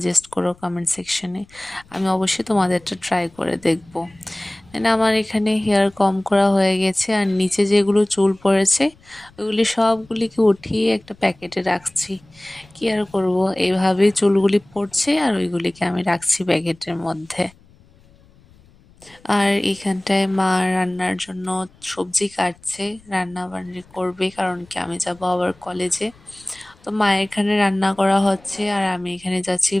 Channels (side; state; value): left; noise; rumble, 28 dB below the sound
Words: করো কমেন্ট সেকশনে। আমি অবশ্যই তোমাদেরটা ট্রাই করে দেখব। আমার এখানে হেয়ার কম করা হয়ে গেছে, আর নিচে যেগুলো চুল পড়েছে ওইগুলি সবগুলিকে উঠিয়ে একটা প্যাকেটে রাখছি। কি আর করব, এইভাবেই চুলগুলি পড়ছে আর ওইগুলিকে আমি রাখছি প্যাকেটের মধ্যে। আর এখানটায় মা রান্নার জন্য সবজি কাটছে, রান্না বান্না করবে, কারণ কি আমি যাব আবার কলেজে। তো মা এখানে রান্না করা হচ্ছে আর আমি এখানে যাচ্ছি